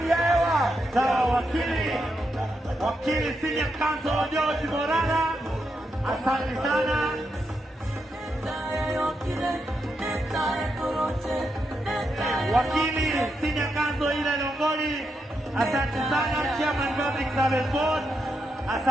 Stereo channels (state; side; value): normal; both; correlation 0.83